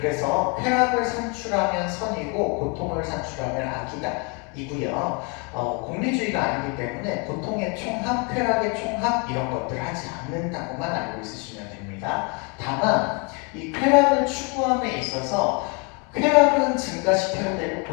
쾌락을 산출하면 선이고 고통을 산출하면 악이다 이고요. 공리주의가 아니기 때문에 고통의 총합, 쾌락의 총합 이런 것들을 하지 않는다고만 알고 있으시면 됩니다. 다만 이 쾌락을 추구함에 있어서 쾌락은 증가시켜야 되고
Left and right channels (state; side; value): quieter; right; 33.3 dB